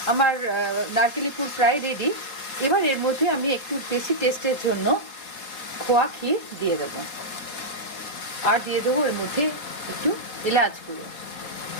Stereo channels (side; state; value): right; late; 4.4 ms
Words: আমার নারকেলি পুর প্রায় রেডি। এবার এর মধ্যে আমি একটু বেশি টেস্টের জন্য খোয়া ক্ষীর দিয়ে দেবো, আর দিয়ে দেবো এর মধ্যে একটু এলাচ গুঁড়ো।